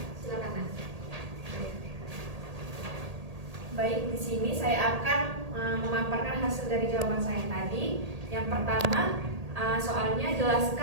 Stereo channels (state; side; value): late; left; 1.8 ms